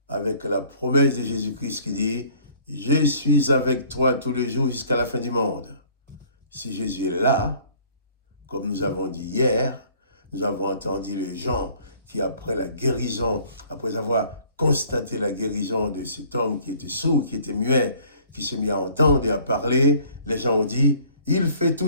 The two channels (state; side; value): inverted; both; correlation -0.55